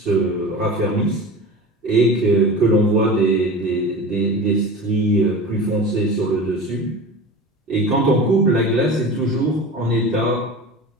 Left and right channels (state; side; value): normal; both; correlation 0.33